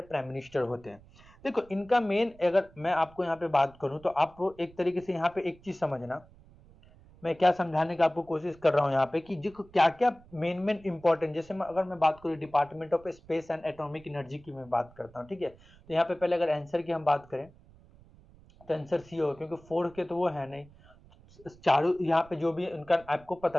प्राइम मिनिस्टर होते हैं। देखो इनका मेन, अगर मैं आपको यहाँ पे बात करूं, तो आप एक तरीके से यहाँ पे एक चीज समझना, मैं क्या समझाने का आपको कोशिश कर रहा हूँ यहाँ पे कि जो क्या क्या मेन इंपॉर्टेंट, जैसे अगर मैं बात करूँ department of space and atomic energy की मैं बात करता हूँ, ठीक है। तो यहाँ पे पहले अगर आंसर की हम बात करें तो आंसर सी होगा, क्योंकि 4 के तो वो है नहीं, चारों यहाँ पे जो भी उनका आपको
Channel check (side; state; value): right; noise; rumble, 25 dB below the sound